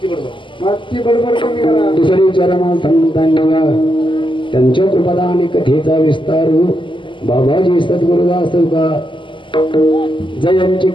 बडबड कमी करा दुसरी चरणा संतांना त्यांच्या कृपादान कथेचा विस्तार बाबाजी सद्गुरुदास का जयांची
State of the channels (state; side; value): late; right; 0.24 ms